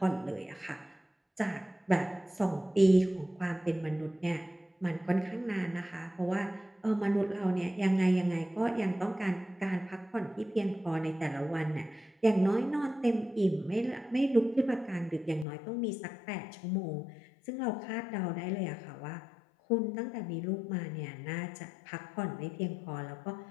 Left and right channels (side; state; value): right; drops out; at 15.5 s